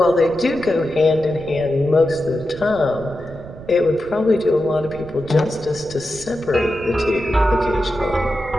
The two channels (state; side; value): noise; right; rumble, 16 dB below the sound